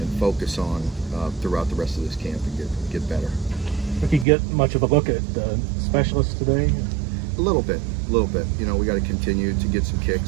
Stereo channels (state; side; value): drops out; left; at 4.2 s